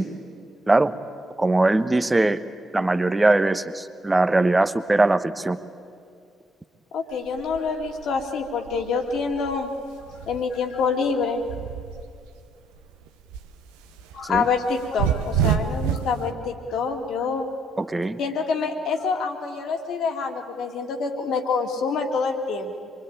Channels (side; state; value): both; normal; correlation 0.74